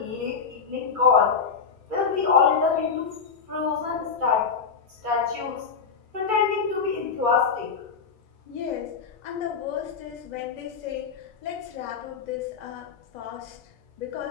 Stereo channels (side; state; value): right; quieter; 5.8 dB